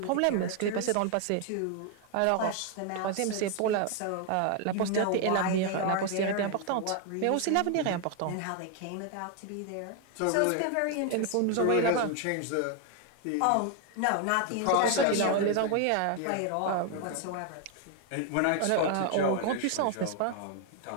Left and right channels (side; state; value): both; different; correlation 0.01